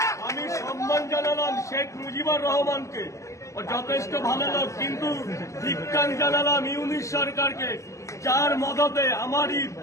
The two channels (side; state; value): right; late; 0.15 ms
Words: আমি সম্মান জানালাম শেখ মুজিবুর রহমানকে, ও যথেষ্ট ভালো লোক, কিন্তু ধিক্কার জানালাম ইউনিশ সরকারকে, যার মদতে আমারই